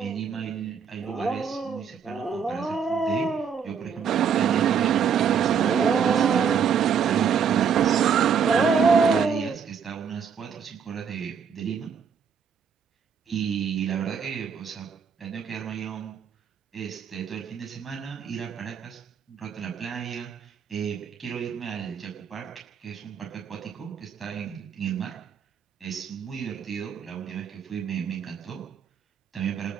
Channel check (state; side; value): quieter; left; 6.9 dB